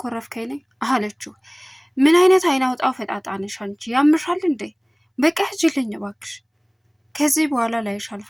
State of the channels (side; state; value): both; identical; correlation 1.00